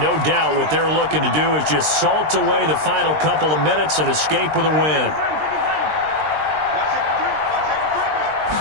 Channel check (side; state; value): left; late; 20 ms